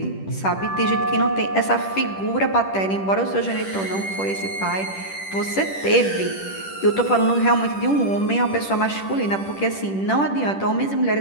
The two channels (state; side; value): late; right; 10 ms